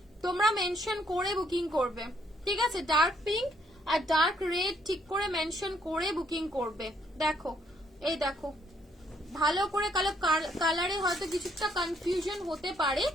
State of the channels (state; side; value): normal; both; correlation 0.70